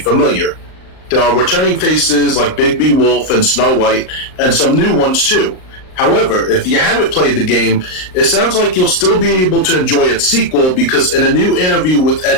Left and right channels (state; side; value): late; right; 38 ms